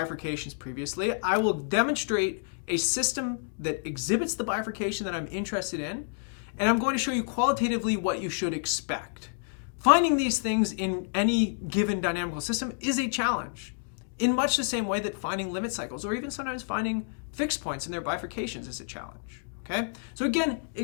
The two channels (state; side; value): silent; right; digital silence